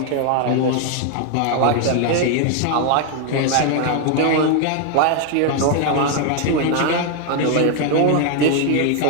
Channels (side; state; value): both; different; correlation 0.00